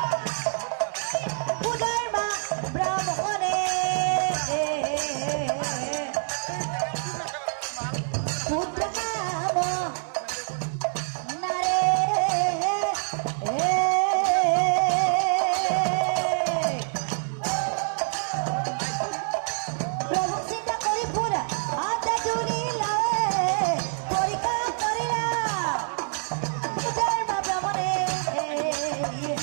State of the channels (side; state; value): left; silent; 61 dB below the other